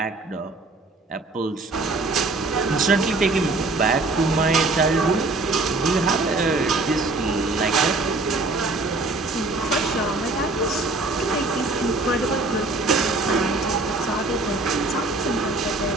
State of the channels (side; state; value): left; quieter; 3.2 dB